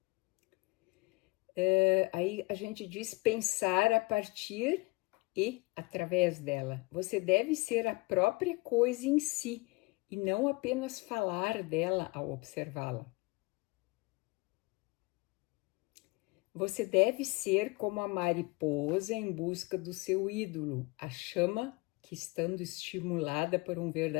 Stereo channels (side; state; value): right; quieter; 25.1 dB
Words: Aí a gente diz pensar a partir e através dela. Você deve ser a própria coisa em si e não apenas falar dela ao observá-la. Você deve ser como a mariposa em busca do seu ídolo, a chama que, estando estimulada por um